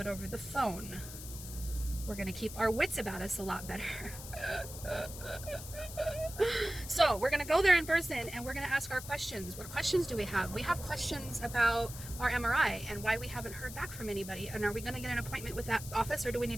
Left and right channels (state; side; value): noise; left; hiss, 12 dB below the sound